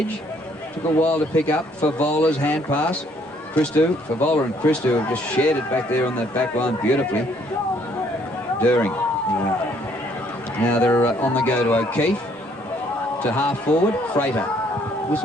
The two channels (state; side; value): normal; both; correlation 0.65